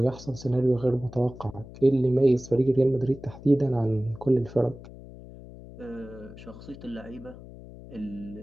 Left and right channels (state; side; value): noise; left; hum, 16 dB below the sound